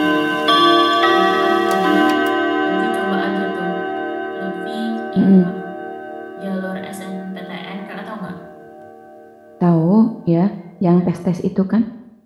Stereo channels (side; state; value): both; identical; correlation 1.00